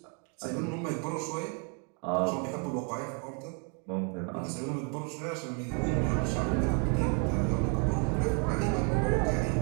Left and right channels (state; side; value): quieter; left; 38.6 dB